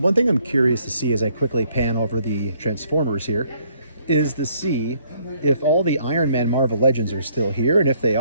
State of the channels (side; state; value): both; inverted; correlation -0.66